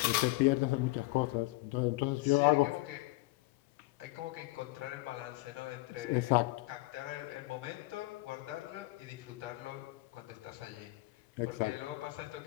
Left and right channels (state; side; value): quieter; right; 20.1 dB